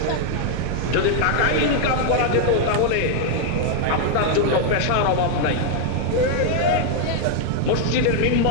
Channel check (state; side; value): different; both; correlation 0.00